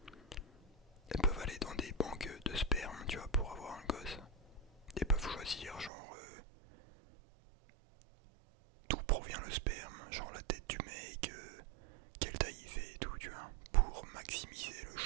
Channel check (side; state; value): left; drops out; at 5.9 s